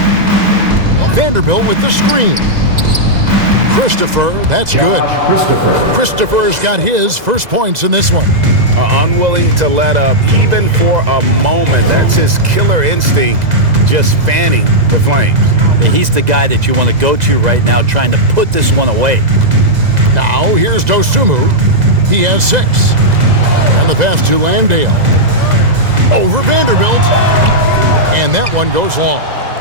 Vanderbilt with the screen. Christopher, that's good. Christopher's got his first points in this one. Unwilling to let up even for a moment. That's his killer instinct, just fanning the flames. Yeah, he's the guy that you want to go to right now trying to put this one away. Now here's Dosunmu. He has 6. And the pass to Landale. Over Vanderbilt. And that one goes long.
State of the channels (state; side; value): late; left; 2.0 ms